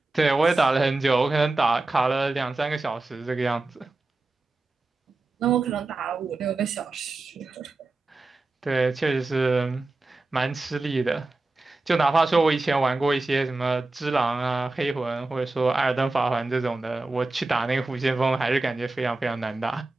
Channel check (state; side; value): quieter; left; 3.2 dB